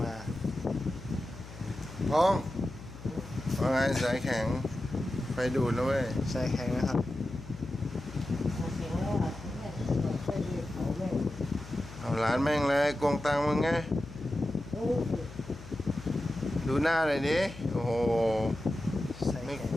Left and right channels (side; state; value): left; noise; hum, 15 dB below the sound